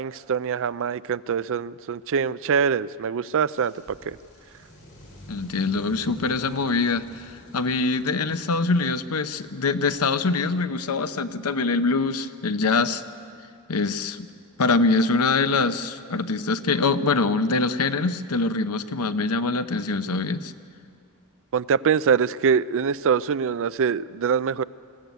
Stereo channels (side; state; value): both; normal; correlation 0.06